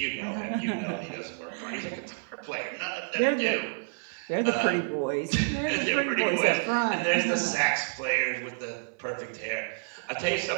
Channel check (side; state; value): left; silent; 59 dB below the other